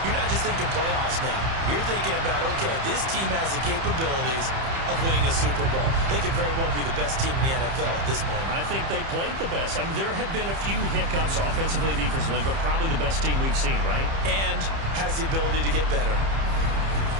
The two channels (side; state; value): left; late; 30 ms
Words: you're not just thinking playoffs now. You're thinking about, okay, this team has the capabilities of winning a Super Bowl. They could very well be the best team in the NFL at this moment. I think they played the best. I mean, there have been a few hiccups offensively and defensively, but probably the best team we've seen, right? And has the ability to get better.